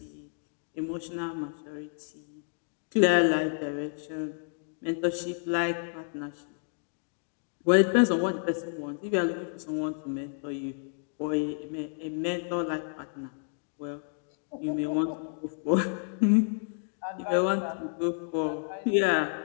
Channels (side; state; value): right; silent; digital silence